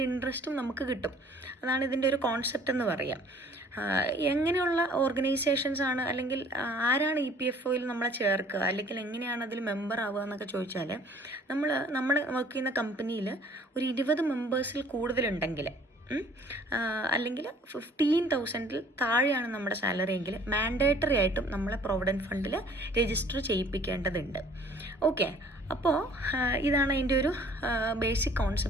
ഇൻട്രസ്റ്റും നമുക്ക് കിട്ടും. അതാണ് ഇതിൻ്റെ ഒരു കോൺസെപ്റ്റ് എന്ന് പറയാം. എങ്ങനെയുള്ള ഓർഗനൈസേഷൻസ് ആണ് അല്ലെങ്കിൽ ആരാണ് EPFOയിൽ നമ്മളെ ചേർക്കുക അല്ലെങ്കിൽ എങ്ങനെയാണ് അതിൽ മെമ്പർ ആവുക എന്നൊക്കെ ചോദിച്ചാൽ നമ്മൾ വർക്ക് ചെയ്യുന്ന കമ്പനിയിൽ ഒരു 20 മെമ്പേഴ്സിൽ കൂടുതലുണ്ടെങ്കിൽ അല്ലെങ്കിൽ 15,000 താഴെയാണ് നമ്മുടെ സാലറി എങ്കിൽ മാൻഡേറ്ററി ആയിട്ടും നമ്മളെ പ്രൊവിഡൻറ്റ് ഫണ്ടിൽ രജിസ്റ്റർ ചെയ്യിപ്പിക്കേണ്ടതുണ്ട്. ഓക്കെ, അപ്പോൾ ഇതാണ് അതിൻ്റെ ഒരു ബേസിക്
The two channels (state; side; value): normal; both; correlation 0.54